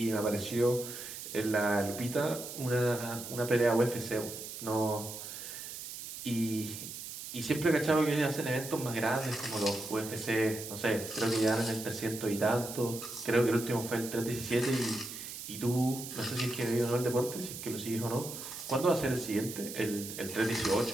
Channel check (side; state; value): right; noise; hiss, 9 dB below the sound